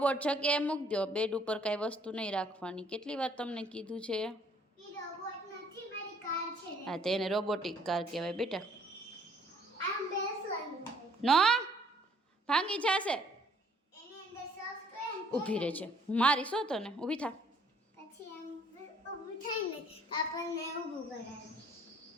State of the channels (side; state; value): both; normal; correlation 0.61